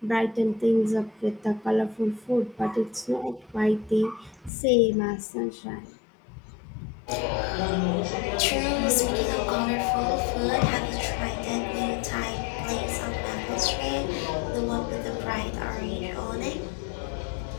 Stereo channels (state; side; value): drops out; right; at 4.5 s